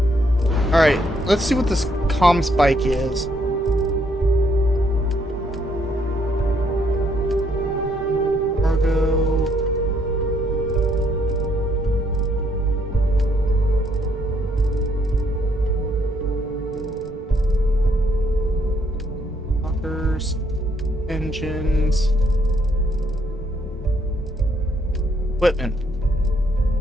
all right. Let's see what this ComSpike is. Cargo. Engines, equipment.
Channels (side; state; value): both; normal; correlation 0.71